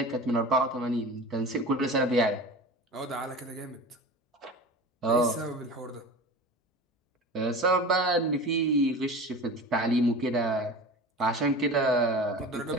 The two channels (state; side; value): normal; both; correlation 0.34